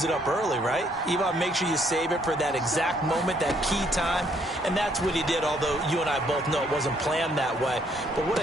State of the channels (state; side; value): normal; both; correlation 0.68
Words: it up early, right? You want to make sure you save it for that exact moment, that key time. And that's what he did, although you and I both know it wasn't planned that way. But what